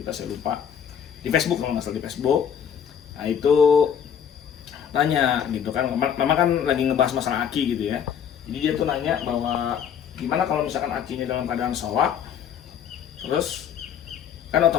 saya lupa. Di Facebook, kalau nggak salah di Facebook. Nah, itu tanya gitu kan. Memang kan lagi ngebahas masalah aki gitu ya. Jadi dia tuh nanya bahwa gimana kalau misalkan akinya dalam keadaan soak, terus kan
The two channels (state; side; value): quieter; right; 8.3 dB